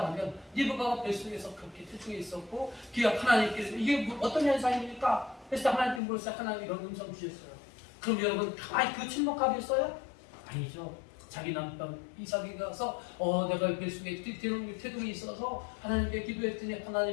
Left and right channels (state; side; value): drops out; right; at 6.0 s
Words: 리브가가 뱃속에서 그렇게 태중에 있었고, 그가 하나님께서 이게 어떤 현상입니까? 그래서 하나님께 물었어요. 하나님 이런 음성 주셨어요. 그럼 여러분 가만히 그 침묵하겠어요? 아니죠. 자기 남편 이삭이 가서 내가 뱃속에 태동이 있어서 하나님께 기도했더니